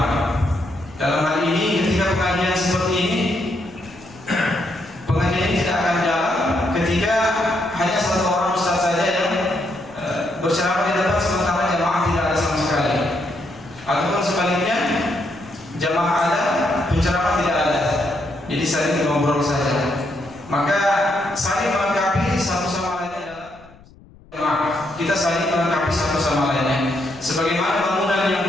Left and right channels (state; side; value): noise; left; rumble, 24 dB below the sound